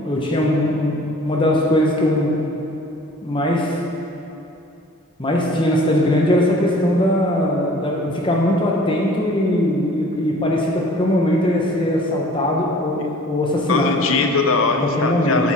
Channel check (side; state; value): both; normal; correlation 0.48